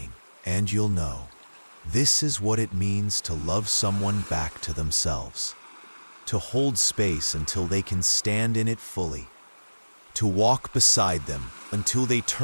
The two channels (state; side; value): inverted; both; correlation -1.00